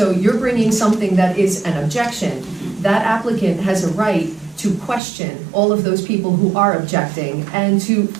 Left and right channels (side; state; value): left; drops out; at 5.0 s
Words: you're bringing something that is an objection. That applicant has a right to question all of those people who are objecting and to